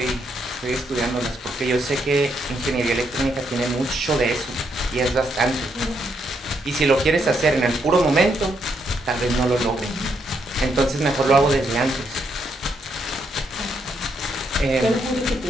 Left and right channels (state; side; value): normal; both; correlation 0.76